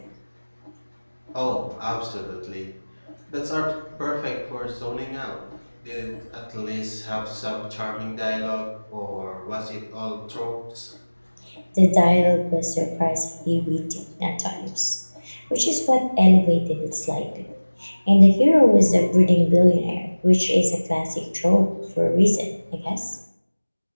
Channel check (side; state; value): both; inverted; correlation -1.00